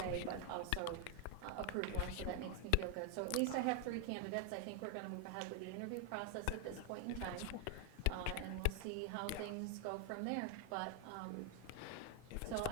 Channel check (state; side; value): different; both; correlation 0.00